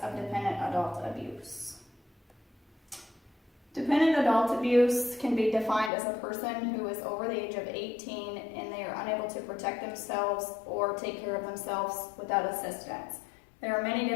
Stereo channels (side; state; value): right; drops out; at 5.9 s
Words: of Dependent Adult Abuse. Dependent adult abuse can be defined as a person who is over the age of 18 and they are unable to protect themselves or take care of themselves without assistance. There are many